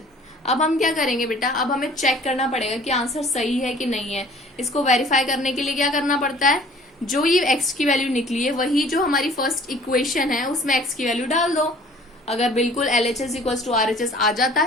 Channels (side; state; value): both; normal; correlation 0.51